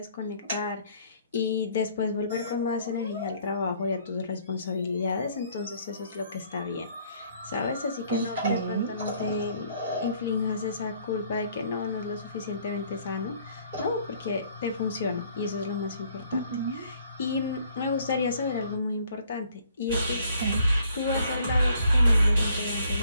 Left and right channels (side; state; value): both; inverted; correlation -0.62